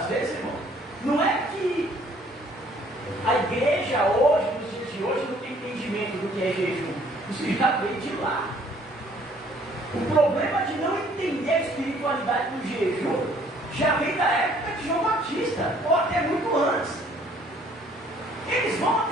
vezes, irmão, não é que a igreja hoje, nos dias de hoje, não tem entendimento do que é jejum. Isso já veio de lá. O problema de não entender a espiritualidade do jejum já vem da época de João Batista, ou até muito antes. Eles vão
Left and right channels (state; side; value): normal; both; correlation 0.60